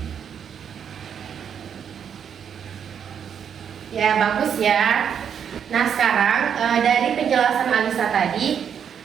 Ya bagus ya. Nah sekarang dari penjelasan Alisa tadi,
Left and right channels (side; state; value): left; quieter; 8.0 dB